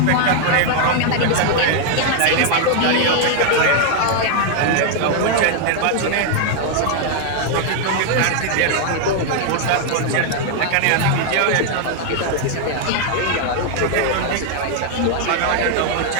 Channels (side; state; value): both; different; correlation 0.00